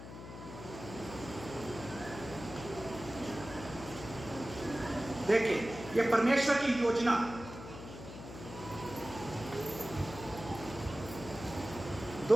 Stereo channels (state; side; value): noise; left; hum, 12 dB below the sound